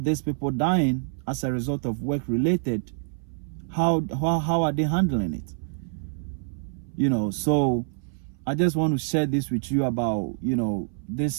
people dying as a result of work related, how are they handling it? So I just want to share this with you about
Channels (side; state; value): left; silent; 61 dB below the other